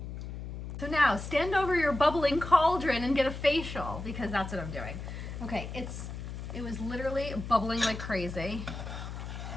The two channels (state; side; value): noise; left; hum, 8 dB below the sound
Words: So now, stand over your bubbling cauldron and get a facial, because that's what I'm doing. Okay, it was literally bubbling like crazy.